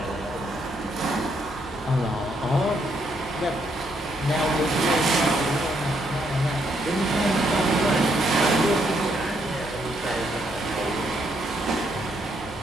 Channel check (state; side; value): normal; both; correlation 0.74